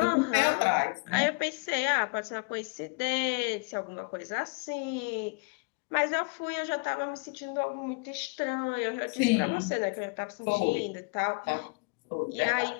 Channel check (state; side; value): quieter; right; 31.2 dB